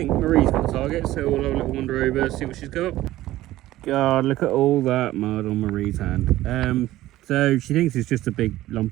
Marie's got the target, so we'll have a little wander over, see what she's got. God, look at all that mud on Marie's hand. So she thinks it's just a big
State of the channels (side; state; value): left; quieter; 15.6 dB